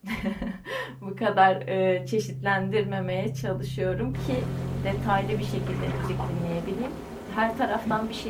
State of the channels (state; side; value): identical; both; correlation 1.00